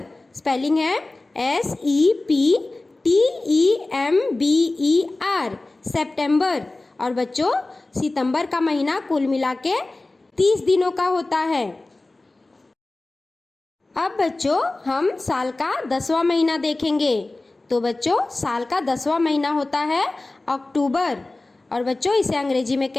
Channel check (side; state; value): right; quieter; 3.0 dB